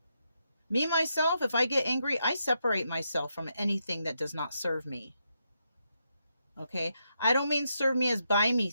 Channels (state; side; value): inverted; both; correlation -0.82